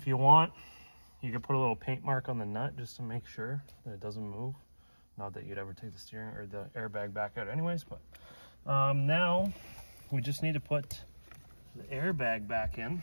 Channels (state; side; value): inverted; both; correlation -1.00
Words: you want, you can put a little paint mark on the nut just to make sure that it doesn't move. Not that you'd ever take the steering or the airbag back out anyways, but now we just need to put the airbag back in